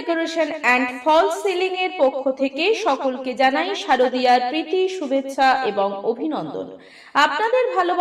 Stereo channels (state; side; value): identical; both; correlation 1.00